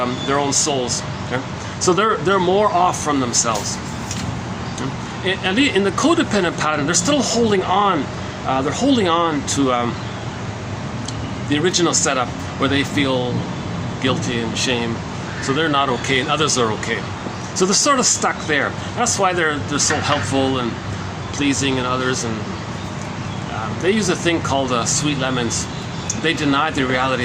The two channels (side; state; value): both; identical; correlation 1.00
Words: their own souls. Okay? So they're more off from themselves. And in the codependent pattern, they're still holding on. They're holding on to the original setup where they feel guilty and shame. So they're not okay, and others are okay. So they're sort of stuck there. That's why they're so helpful and pleasing in others. And they use a thing called sweet lemons. They deny the reality